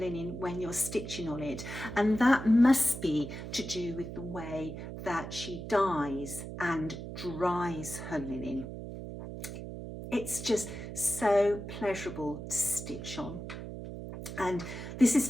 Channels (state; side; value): noise; right; hum, 9 dB below the sound